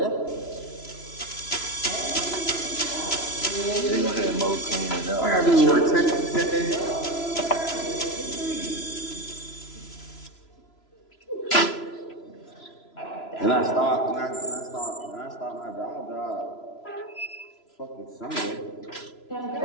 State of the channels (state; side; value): late; right; 3.0 ms